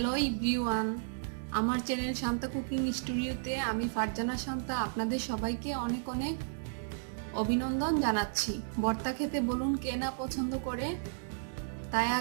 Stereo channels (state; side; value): silent; left; digital silence